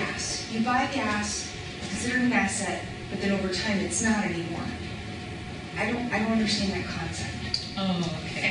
You buy gas, consider it an asset, but then over time it's not anymore. I don't understand that concept. Oh, I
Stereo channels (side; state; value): both; identical; correlation 1.00